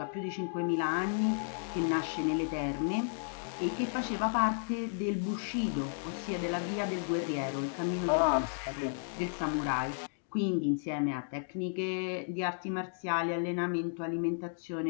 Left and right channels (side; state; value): right; silent; digital silence